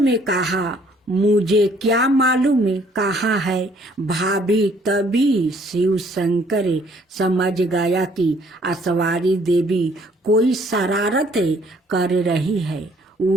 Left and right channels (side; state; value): both; normal; correlation 0.62